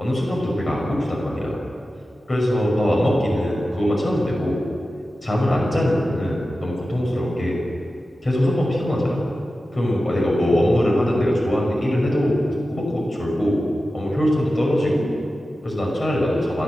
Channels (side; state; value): both; normal; correlation 0.93